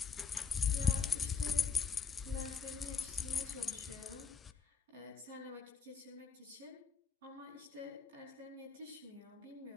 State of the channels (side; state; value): right; quieter; 5.9 dB